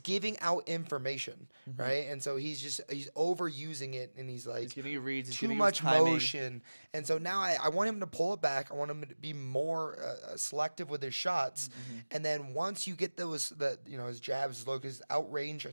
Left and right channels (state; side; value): inverted; both; correlation -1.00